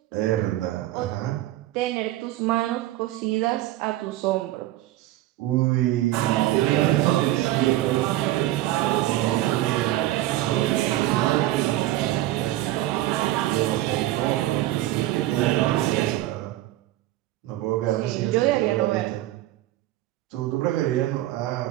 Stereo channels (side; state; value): left; quieter; 15.4 dB